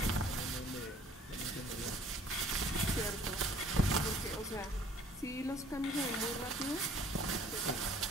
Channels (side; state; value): both; normal; correlation 0.56